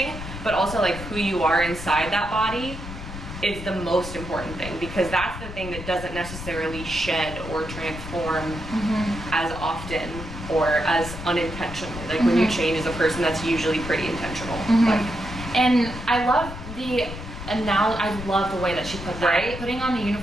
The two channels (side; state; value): left; noise; rumble, 10 dB below the sound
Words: But also like who you are inside that body is the most important thing, because that's the thing that doesn't necessarily shed or transform as often or as unintentionally. Like when you change as a person, that's usually pretty intentional. Like, and I love the I love the way that she put that, Right? putting on the